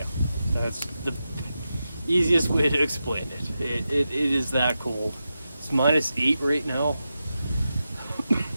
That's the easiest way to explain it. It is that cold. It's -8 right now.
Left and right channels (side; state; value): both; inverted; correlation -0.90